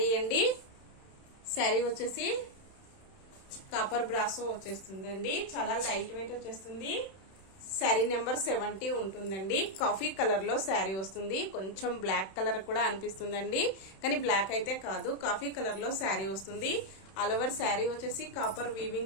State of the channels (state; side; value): late; right; 31 ms